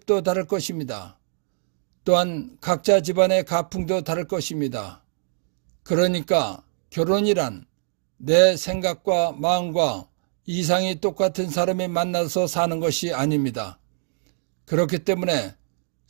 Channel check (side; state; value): left; silent; digital silence